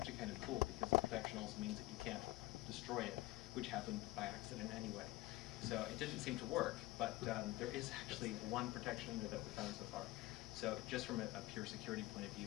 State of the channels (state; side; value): quieter; right; 18.4 dB